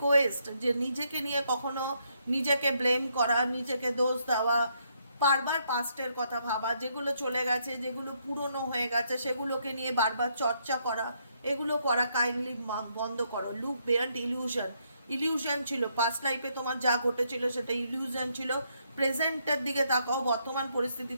যে নিজেকে নিয়ে কখনো নিজেকে ব্লেম করা, নিজেকে দোষ দেওয়া, বারবার পাস্টের কথা ভাবা, যেগুলো চলে গেছে, যেগুলো পুরনো হয়ে গেছে সেগুলোকে নিয়ে বারবার চর্চা করা, এগুলো করা কাইন্ডলি বন্ধ করো। লুক বিয়ন্ড ইলিউশন, ইলিউশন ছিল পাস্ট লাইফে তোমার যা ঘটেছিল সেটা ইলিউশন ছিল, প্রেজেন্টের দিকে তাকাও, বর্তমান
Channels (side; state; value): both; inverted; correlation -0.74